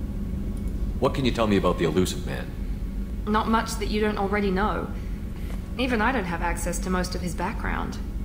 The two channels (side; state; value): both; identical; correlation 1.00